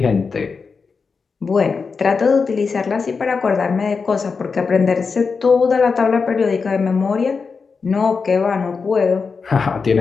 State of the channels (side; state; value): right; quieter; 5.0 dB